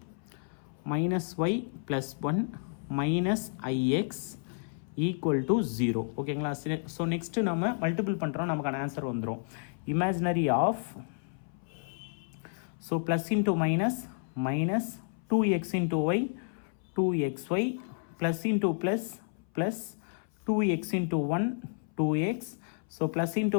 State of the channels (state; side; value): silent; right; 57 dB below the other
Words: -y plus 1 minus ix equal to 0. ஓகேங்களா? ஸோ நெக்ஸ்ட்டு நம்ம மல்டிபிள் பண்ணுறோம், நமக்கான ஆன்சர் வந்துடும். Imaginary of so plus into minus minus 2x into y 2xy plus into plus plus 2x into 1 2x. So plus